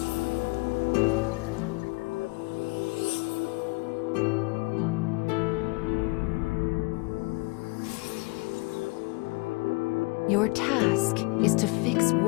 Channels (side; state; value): right; quieter; 26.9 dB